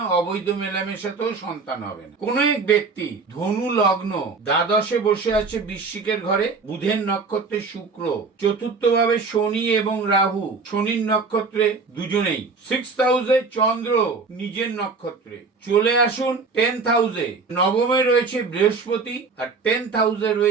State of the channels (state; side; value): quieter; left; 4.4 dB